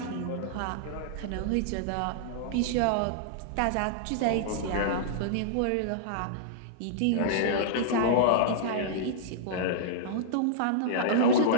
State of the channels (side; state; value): both; different; correlation -0.02